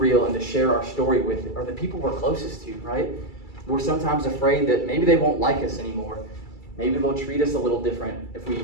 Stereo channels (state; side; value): late; right; 2.3 ms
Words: and to share our story with are the people we're closest to, right? We're sometimes afraid that maybe they won't like us anymore. Maybe they'll treat us a little different